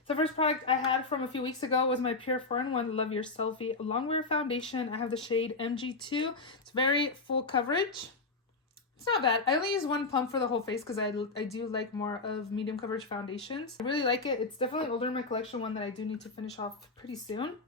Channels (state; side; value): quieter; right; 3.8 dB